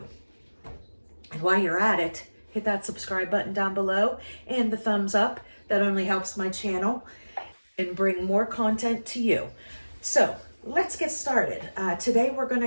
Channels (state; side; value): inverted; both; correlation -1.00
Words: And while you're at it, hit that subscribe button down below and the thumbs up. That only helps my channel and bring more content to you. So let's get started. Today we're going to